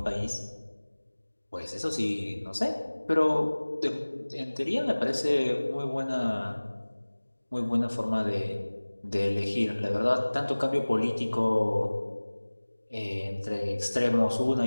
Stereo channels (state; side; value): inverted; both; correlation -1.00